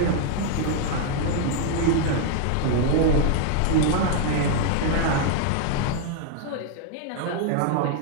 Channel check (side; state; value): both; different; correlation 0.00